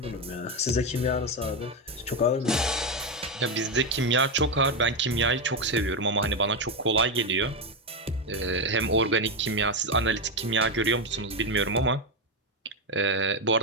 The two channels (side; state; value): both; normal; correlation 0.08